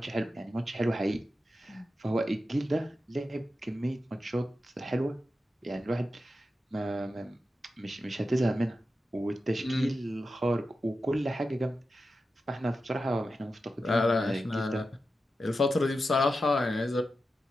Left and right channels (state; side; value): normal; both; correlation 0.91